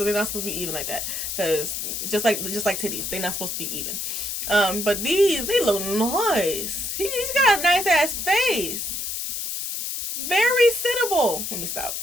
they're not supposed to be even like that. Cause just like titties, they're not supposed to be even. But these, they look nice. He's got a nice ass face. Very sittable. Let me stop.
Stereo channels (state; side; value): noise; left; hiss, 4 dB below the sound